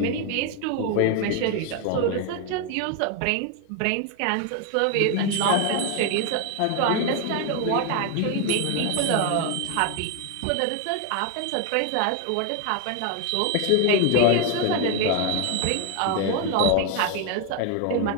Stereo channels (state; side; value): different; both; correlation 0.01